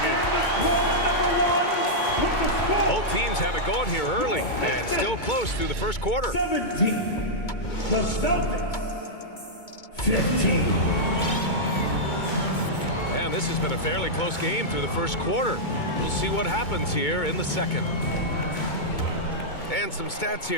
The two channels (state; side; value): late; right; 2.2 ms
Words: in. Both teams have it going here early and still close through the first quarter. 17. The Celtics. 15. And this has been a fairly close game through the first quarter. We'll see what happens here in the second. And some stats